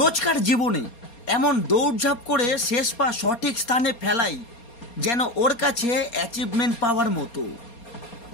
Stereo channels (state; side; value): late; right; 4.2 ms